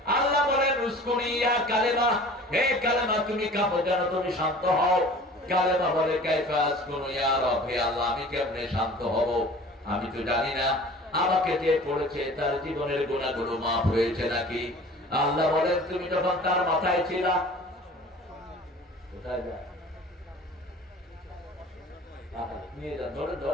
আল্লাহ বলেন উসকুনি ইয়া কালেমা, হে কালেমা তুমি কাঁপো যেন তুমি শান্ত হও। কালেমা বলে কাইফা আসকুনু ইয়া রব, হে আল্লাহ আমি কেমনে শান্ত হব, আমি তো জানি না আমাকে যে পড়েছে তার জীবনের গুনাহগুলো মাফ হয়েছে নাকি। আল্লাহ বলেন তুমি যখন তার মাথায় ছিলা, কোথায় যায় নিয়ে যান, ধরে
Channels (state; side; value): normal; both; correlation 0.44